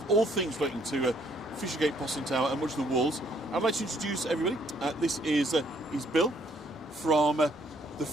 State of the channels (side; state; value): both; normal; correlation 0.66